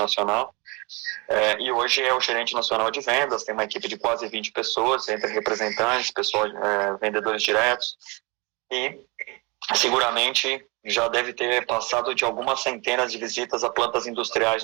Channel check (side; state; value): left; quieter; 27.9 dB